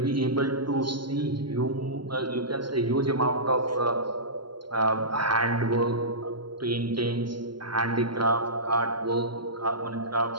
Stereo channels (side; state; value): left; late; 0.72 ms